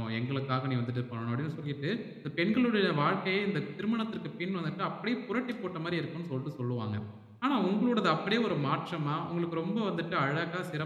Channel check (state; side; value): identical; both; correlation 1.00